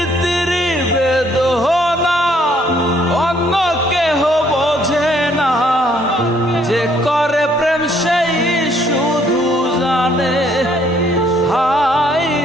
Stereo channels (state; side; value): normal; both; correlation 0.65